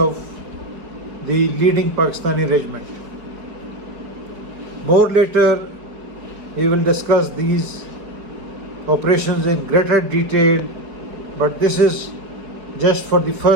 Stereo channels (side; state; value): left; late; 4.8 ms